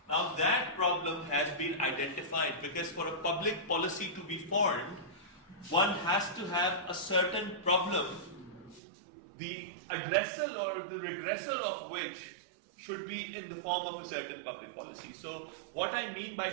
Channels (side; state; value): left; drops out; at 8.8 s